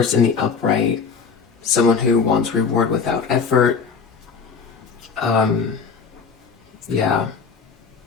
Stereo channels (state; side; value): quieter; right; 5.6 dB